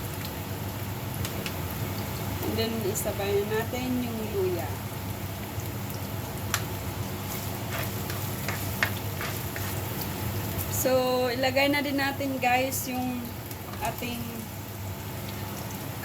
And then, isabay na natin yung luya. So, ilagay na din natin, guys, yung ating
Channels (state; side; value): identical; both; correlation 1.00